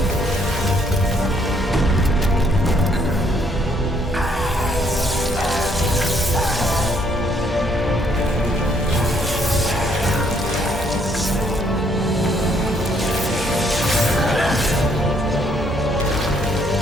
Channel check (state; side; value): normal; both; correlation 0.68